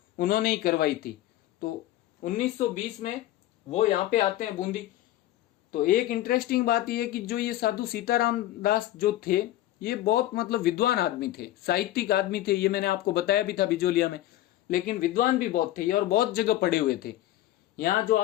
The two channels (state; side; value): quieter; right; 14.5 dB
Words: उन्होंने ही करवाई थी। तो 1920 में वो यहाँ पे आते हैं बूंदी। तो एक इंटरेस्टिंग बात यह है कि जो ये साधु सीताराम दास जो थे, ये बहुत मतलब विद्वान आदमी थे, साहित्यिक आदमी थे। ये मैंने आपको बताया भी था बिजोलिया में। लेकिन विद्वान भी बहुत थे और बहुत जगह पढ़े हुए थे। यहाँ जो